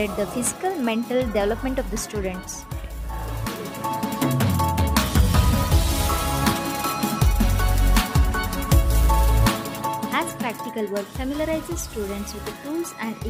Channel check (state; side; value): identical; both; correlation 1.00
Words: the physical mental development of the students. As practical work familiarizes students with the tools and